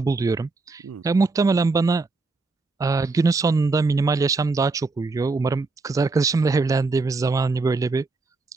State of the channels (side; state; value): left; quieter; 3.7 dB